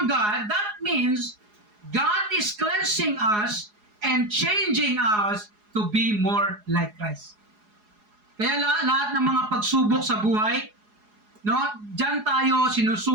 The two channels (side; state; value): left; late; 4.8 ms